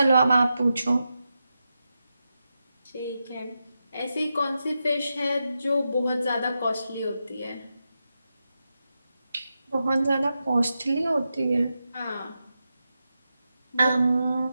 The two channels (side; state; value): both; inverted; correlation -0.89